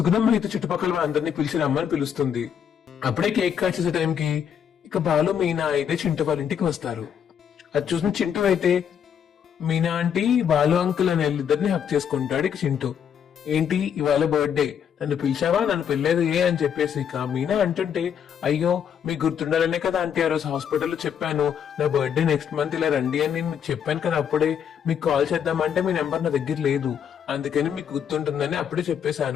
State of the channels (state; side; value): quieter; right; 8.3 dB